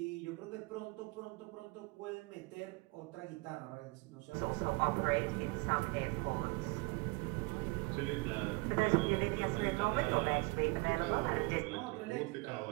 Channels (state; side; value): quieter; left; 26.4 dB